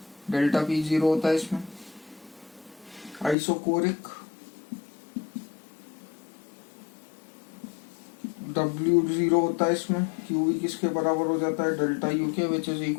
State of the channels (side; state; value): right; drops out; at 3.4 s